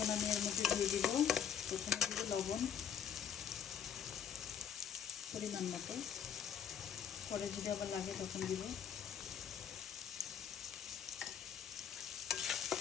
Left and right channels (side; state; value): right; quieter; 8.5 dB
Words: আমি এর মধ্যে দিয়ে দিব, প্রথমে দিব লবণ পরিমাণ মতো, পরে যদি আবার লাগে তখন দিব।